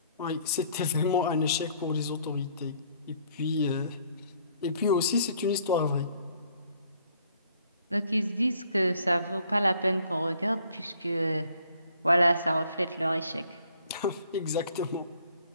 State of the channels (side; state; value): both; inverted; correlation -0.62